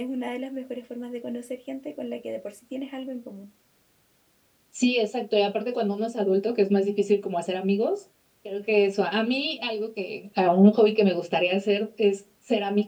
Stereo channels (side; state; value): both; identical; correlation 1.00